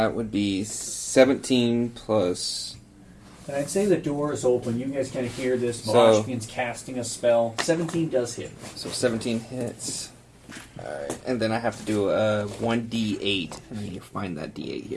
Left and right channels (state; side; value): identical; both; correlation 1.00